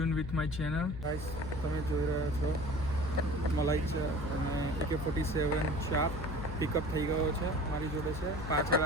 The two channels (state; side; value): noise; left; hum, 8 dB below the sound